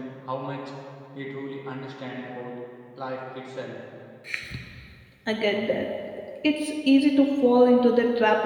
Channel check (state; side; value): identical; both; correlation 1.00